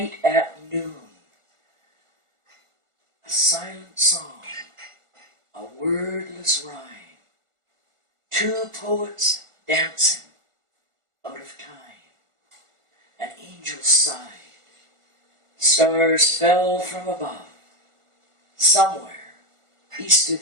at noon. A silent song, a wordless rhyme. 2 poets dancing out of time. An angel sighed. Stars fell from above. Somewhere east of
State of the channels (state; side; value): late; left; 1.4 ms